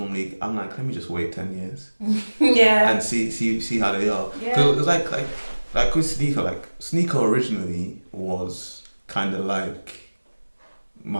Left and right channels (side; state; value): both; inverted; correlation -1.00